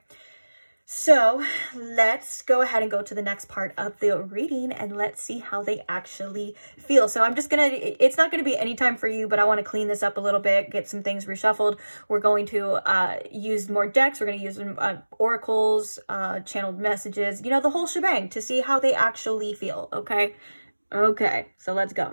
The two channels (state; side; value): inverted; both; correlation -1.00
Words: So let's go ahead and go to the next part of the reading and let's see how they actually feel. So I'm just it's not going to be any time for you, but I want to clean this up a little bit, get some things reshuffled. We're going to use more decks. We're going to use oracles, channeled messages, the whole shebang to see how they actually feel, okay? Okay, so let's